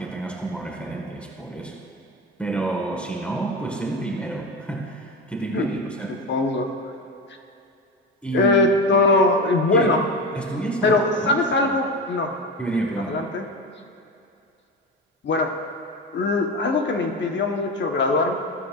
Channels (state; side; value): normal; both; correlation 0.22